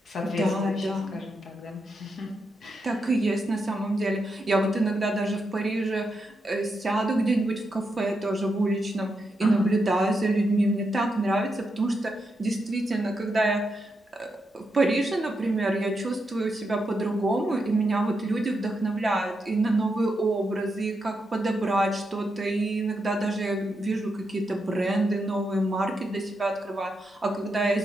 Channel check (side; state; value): both; normal; correlation 0.84